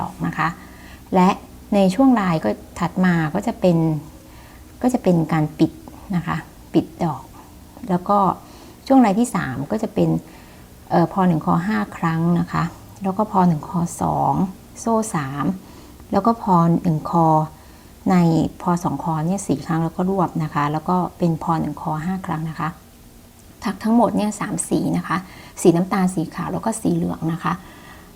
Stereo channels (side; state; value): both; identical; correlation 1.00